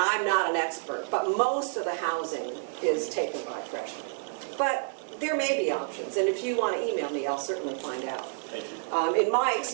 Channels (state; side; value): silent; left; digital silence